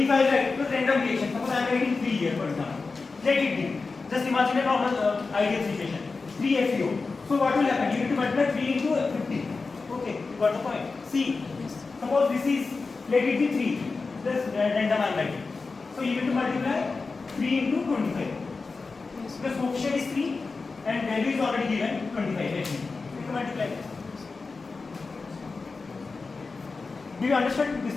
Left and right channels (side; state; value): right; quieter; 4.2 dB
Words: I write with random reaction, suppose I am writing 3 here, for example. Let it be. Just imagine a normal ideal situation. 3 FeO. So what will happen? You need to multiply 3 into 50. Okay, got the point? See, suppose this is, let it be 3. Just random I am writing. So you need to multiply 3 into 25. The coefficient is 3 and value is already given 25. Let me. You need to multiply this. Do you understand this